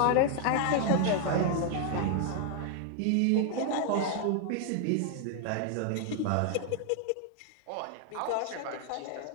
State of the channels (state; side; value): different; both; correlation 0.00